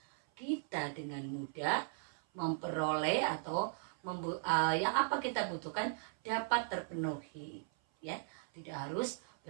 kita dengan mudah memperoleh atau yang apa kita butuhkan dapat terpenuhi. Ya, tidak harus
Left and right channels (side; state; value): left; silent; 53 dB below the other